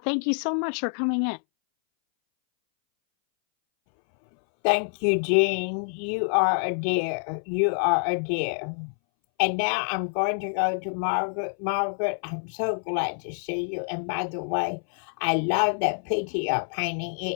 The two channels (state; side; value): silent; right; 61 dB below the other